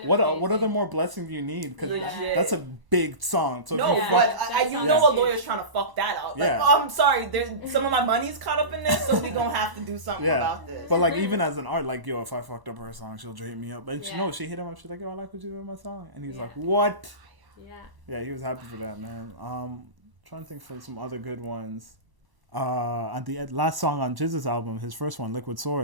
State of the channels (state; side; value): late; left; 1.0 ms